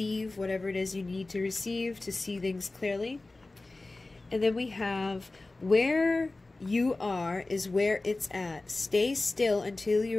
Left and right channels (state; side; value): quieter; right; 3.1 dB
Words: whatever it is you need to receive to see things clearly. And then we have where you are is where it's at. Stay still until